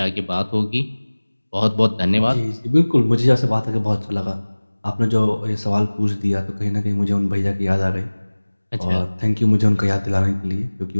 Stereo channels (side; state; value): both; inverted; correlation -1.00